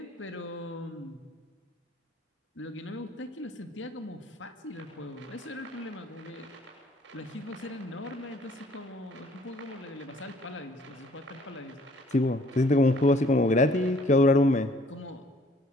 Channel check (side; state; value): both; normal; correlation 0.59